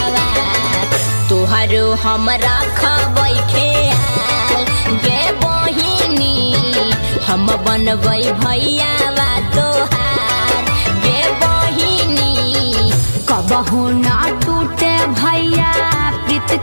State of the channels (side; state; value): both; inverted; correlation -1.00